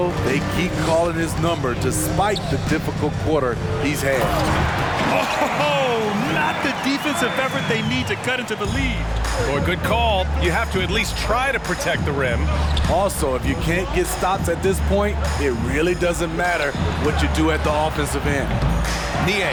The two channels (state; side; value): identical; both; correlation 1.00